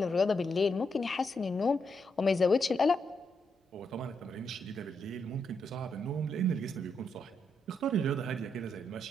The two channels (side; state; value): both; normal; correlation 0.80